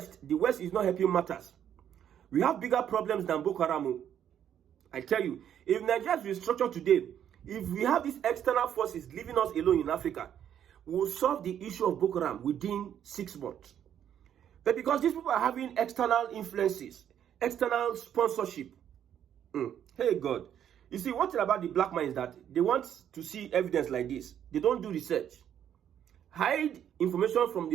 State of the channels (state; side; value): quieter; left; 9.7 dB